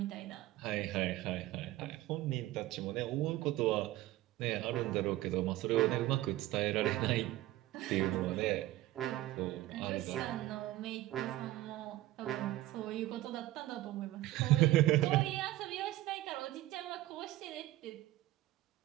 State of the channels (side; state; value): left; quieter; 16.2 dB